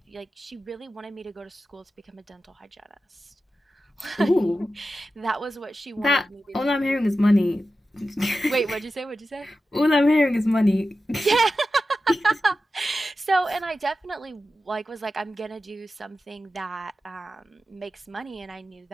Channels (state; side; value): normal; both; correlation 0.92